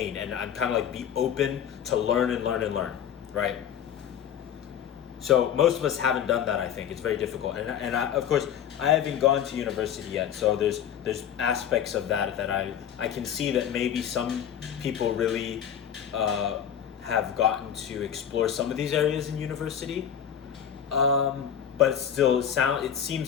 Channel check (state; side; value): quieter; right; 9.1 dB